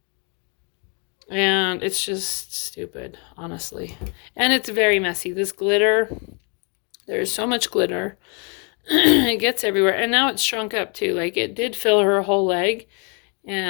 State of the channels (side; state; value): right; quieter; 36.1 dB